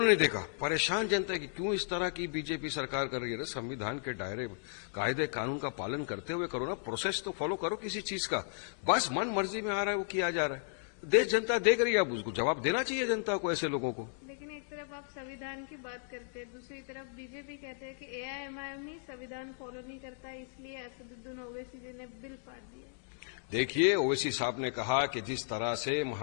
नहीं देखा। परेशान जनता है कि क्यों इस तरह की बीजेपी सरकार कर रही है। संविधान के दायरे, कायदे कानून का पालन करते हुए करो ना, प्रोसेस तो फॉलो करो किसी चीज का। बस मन मर्जी में आ रहा है वो किया जा रहा है। देश जनता देख रही है, अब उसको जवाब देना चाहिए जनता को, ऐसे लोगों को। लेकिन एक तरफ आप संविधान की बात करते हैं, दूसरी तरफ बीजेपी कहते हैं कि एआईएमआईएम ही संविधान फॉलो नहीं करता, इसलिए असदुद्दीन ओवैसी जी ने बिल फाड़ दिया। देखिए, ओवैसी साहब ने कहा कि जिस तरह से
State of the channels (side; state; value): right; silent; digital silence